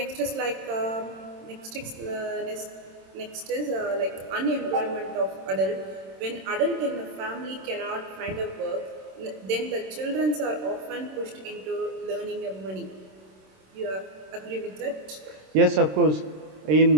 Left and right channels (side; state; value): left; late; 26 ms